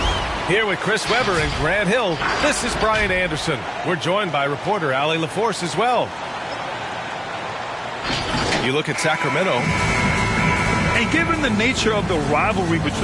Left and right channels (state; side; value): identical; both; correlation 1.00